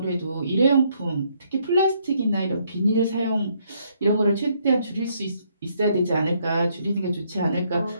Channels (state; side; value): inverted; both; correlation -0.71